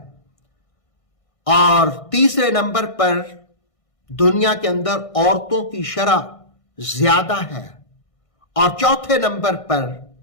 اور تیسرے نمبر پر دنیا کے اندر عورتوں کی شرح زیادہ ہے، اور چوتھے نمبر پر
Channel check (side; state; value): right; late; 1.6 ms